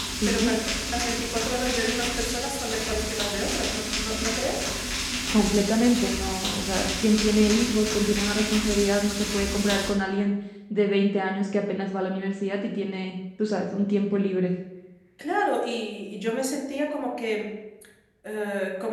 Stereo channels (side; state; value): both; identical; correlation 1.00